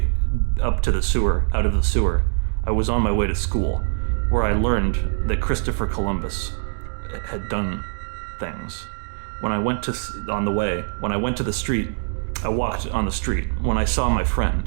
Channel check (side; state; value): left; silent; digital silence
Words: up to the sewer, out of the sewer, I was on my way to school, where I learned that Christopher Columbus had done things. When I went to the street, I walked on the street. When I saw my